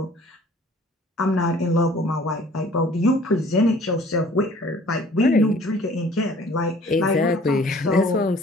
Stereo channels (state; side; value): normal; both; correlation 0.53